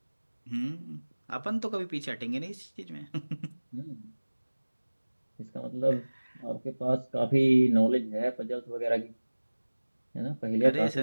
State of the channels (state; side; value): inverted; both; correlation -1.00